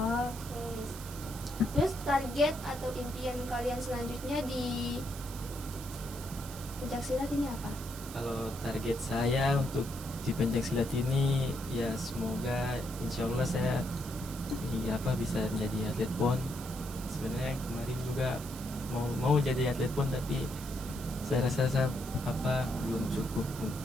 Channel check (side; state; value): right; noise; hiss, 13 dB below the sound